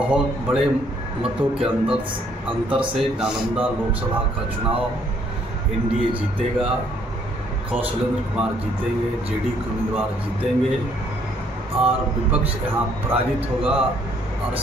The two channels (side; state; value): both; normal; correlation 0.66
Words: बड़े मतों के अंतर से नालंदा लोकसभा का चुनाव एनडीए जीतेगा। कौशलेंद्र कुमार जीतेंगे, जेडी के उम्मीदवार जीतेंगे और विपक्ष यहाँ पराजित होगा। और